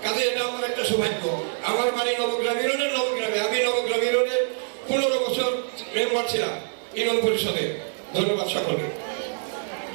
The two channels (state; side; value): silent; left; 62 dB below the other